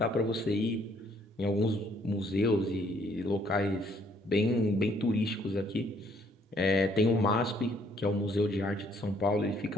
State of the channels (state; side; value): normal; both; correlation 0.65